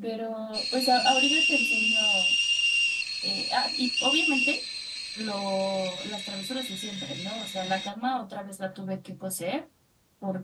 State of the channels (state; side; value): identical; both; correlation 1.00